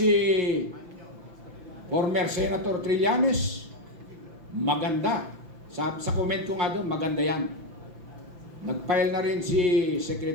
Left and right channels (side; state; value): left; late; 5.9 ms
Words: former Senator Trillanes. Maganda. Sa comment ko nga doon, maganda yan. Nag-file na rin si